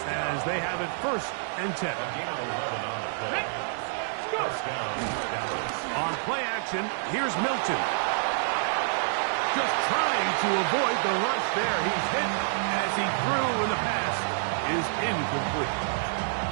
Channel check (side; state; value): left; silent; digital silence